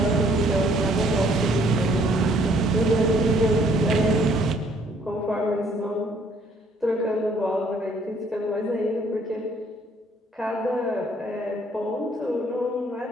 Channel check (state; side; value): normal; both; correlation 0.63